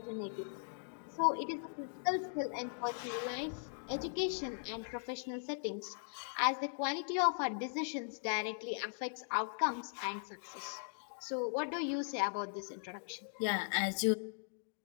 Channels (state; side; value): silent; right; digital silence